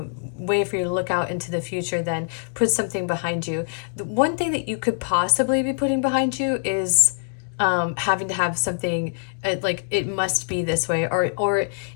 way for you to look out into the future, then put something behind you. The one thing that you could possibly be putting behind you is having to have something like it must be this way, or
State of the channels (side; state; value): right; silent; digital silence